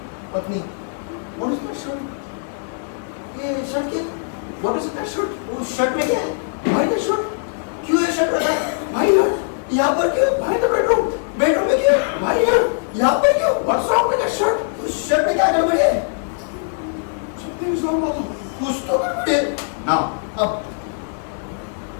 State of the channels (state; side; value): silent; right; digital silence